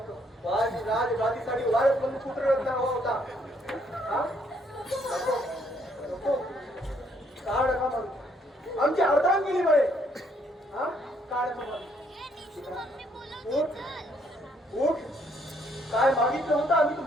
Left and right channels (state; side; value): normal; both; correlation 0.69